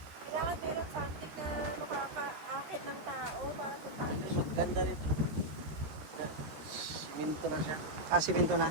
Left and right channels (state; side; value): late; left; 13 ms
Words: Kailangan meron something na makakaakit ng tao para puntahan siya. Ganda rito. Siminto na siya. Ah, simento na.